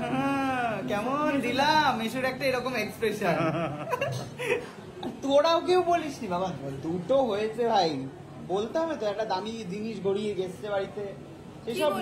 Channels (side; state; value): both; identical; correlation 1.00